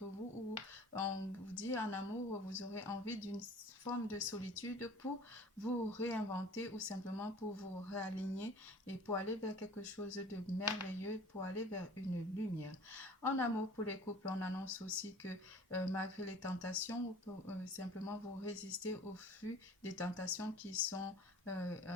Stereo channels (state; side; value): normal; both; correlation 0.46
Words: vous où on vous dit en amour, vous aurez envie d'une forme de solitude pour vous réinventer ou simplement pour vous réaligner et pour aller vers quelque chose de merveilleux, pour aller vers une lumière. En amour pour les couples, on annonce aussi que malgré les tentations, ou simplement vous résistez au flux des tentations qui sont